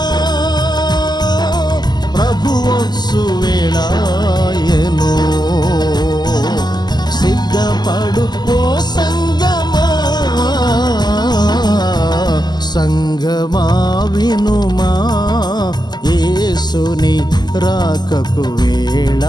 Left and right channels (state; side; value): late; right; 0.21 ms